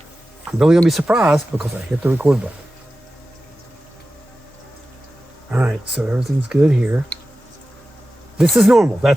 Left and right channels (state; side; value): normal; both; correlation 0.94